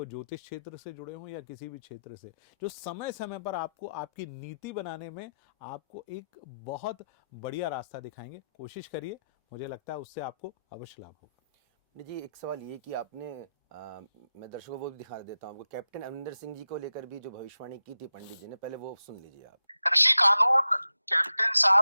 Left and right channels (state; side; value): inverted; both; correlation -0.89